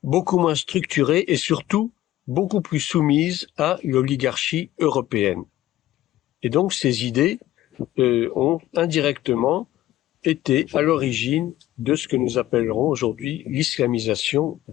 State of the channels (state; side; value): quieter; right; 14.5 dB